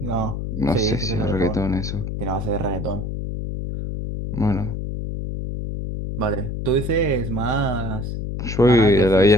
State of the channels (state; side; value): noise; left; hum, 5 dB below the sound